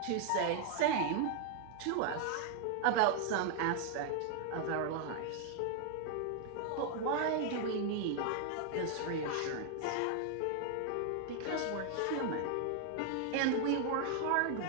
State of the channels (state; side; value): different; both; correlation 0.00